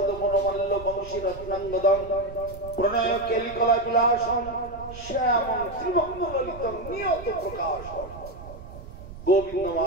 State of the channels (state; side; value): noise; right; rumble, 14 dB below the sound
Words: মনোমল্ল বংশী রত্নাঙ্গদম প্রণয় কেলিকলা বিলাসম শ্যামং ত্রিভঙ্গ ললিতম নিয়ত প্রকাশম